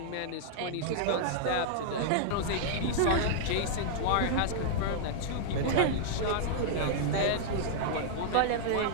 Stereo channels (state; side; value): different; both; correlation -0.01